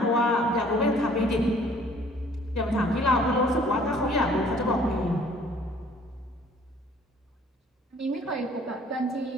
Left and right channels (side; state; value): both; normal; correlation 0.56